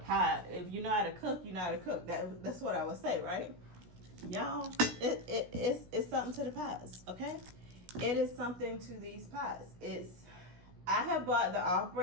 If you know how to cook, you know how to cook. That's what I would say, right? Y'all, it's something to the pots, okay? It is something to these pots. I have bought the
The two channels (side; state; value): left; late; 16 ms